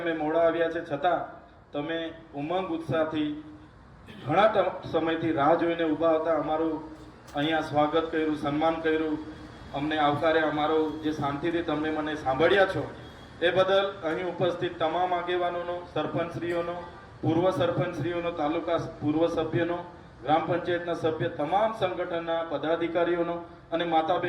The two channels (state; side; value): identical; both; correlation 1.00